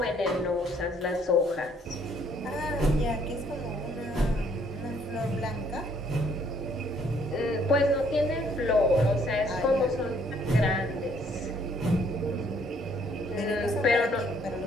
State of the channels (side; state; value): both; normal; correlation 0.64